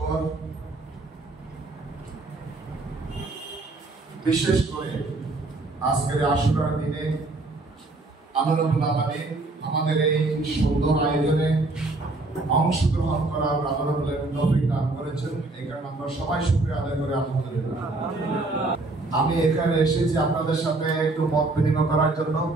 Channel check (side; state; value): left; quieter; 3.1 dB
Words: বিশেষ করে আজকের আশুরার দিনে আল্লাহ রাব্বুল আলামিন আমাদের এই সুন্দর আয়োজনে অংশগ্রহণ করার আল্লাহ রাব্বুল আলামিন তৌফিক দান করেছেন। এই কারণে আমরা সবাই শুকরিয়া আদায় করি আলহামদুলিল্লাহ। আমি এখানে এসেছি আপনাদের সাথে একটু মত বিনিময় করার জন্য,